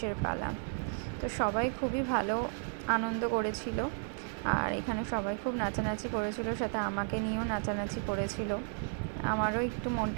পালা। তো সবাই খুবই ভালো আনন্দ করেছিল, আর এখানে সবাই খুব নাচানাচি করেছিল, সাথে আমাকে নিয়েও নাচানাচি করেছিল। আমারও একটু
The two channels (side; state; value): left; silent; 55 dB below the other